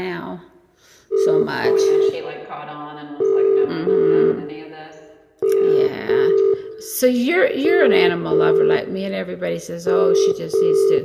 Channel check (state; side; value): identical; both; correlation 1.00